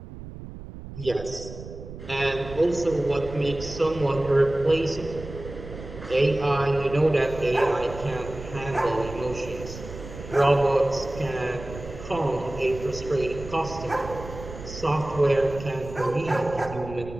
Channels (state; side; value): noise; right; rumble, 13 dB below the sound